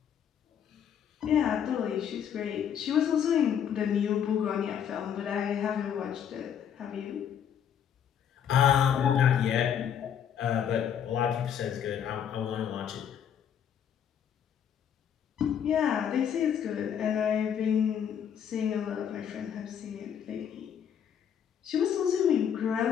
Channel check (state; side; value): quieter; right; 8.6 dB